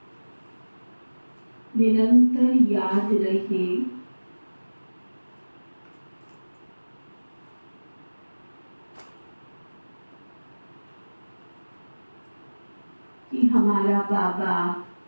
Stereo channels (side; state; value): both; inverted; correlation -1.00